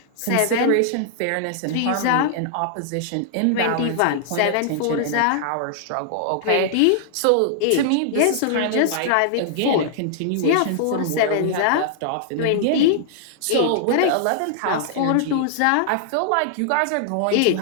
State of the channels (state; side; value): different; both; correlation -0.01